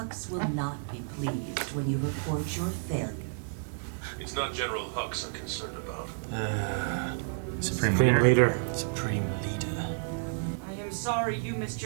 will not be pleased when you report your failure. It's not General Hux I'm concerned about. Supreme Supreme leader. Supreme leader. I am sorry you missed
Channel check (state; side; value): silent; left; digital silence